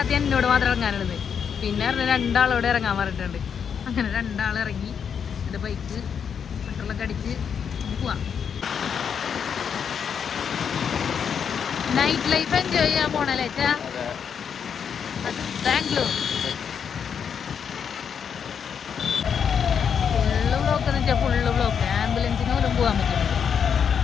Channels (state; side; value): quieter; right; 7.3 dB